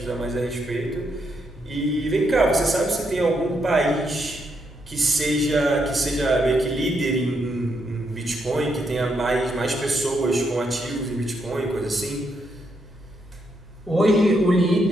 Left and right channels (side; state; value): both; normal; correlation 0.78